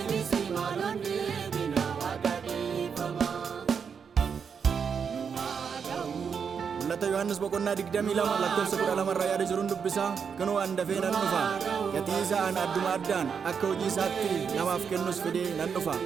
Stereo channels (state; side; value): quieter; left; 6.5 dB